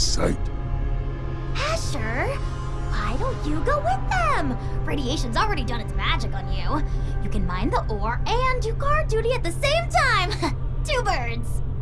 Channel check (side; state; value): both; identical; correlation 1.00